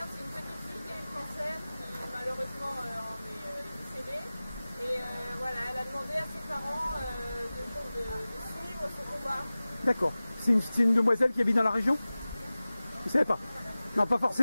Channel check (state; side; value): inverted; both; correlation -0.98